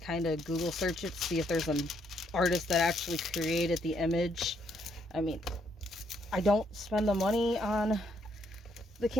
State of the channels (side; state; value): both; normal; correlation 0.72